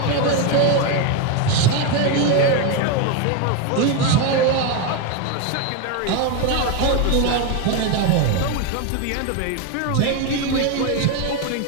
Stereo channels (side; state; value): both; different; correlation 0.02